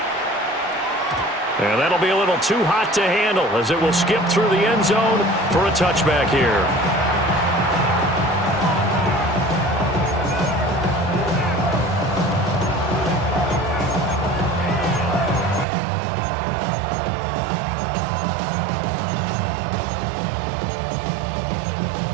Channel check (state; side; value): drops out; left; at 15.7 s